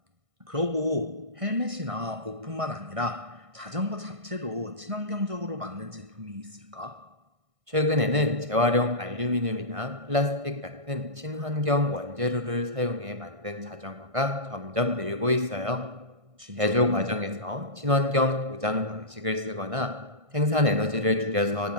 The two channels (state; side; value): late; left; 1.6 ms